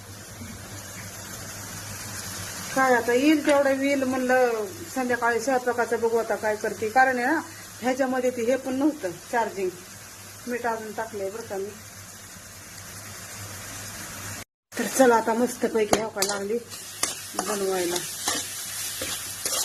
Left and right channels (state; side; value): identical; both; correlation 1.00